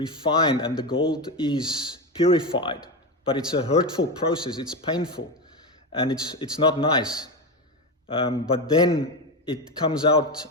and the gold is purified. But it's a hurtful process. It's painful, and it's not nice. But then it comes out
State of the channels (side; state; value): both; normal; correlation 0.16